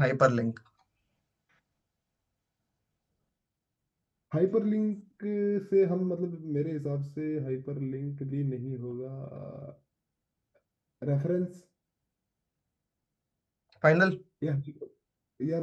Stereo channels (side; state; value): both; identical; correlation 1.00